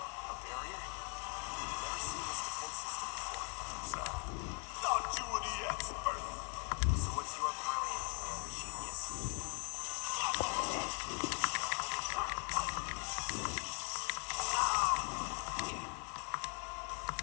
A barrier? Never seen this defense system before. Thought you were the expert. So what's your brilliant plan, genius?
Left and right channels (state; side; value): quieter; right; 35.5 dB